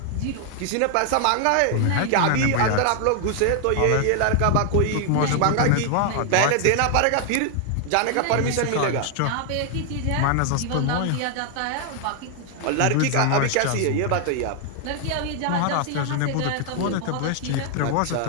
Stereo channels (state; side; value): different; both; correlation 0.00